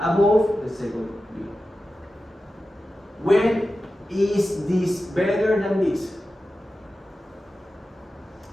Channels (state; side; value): normal; both; correlation 0.93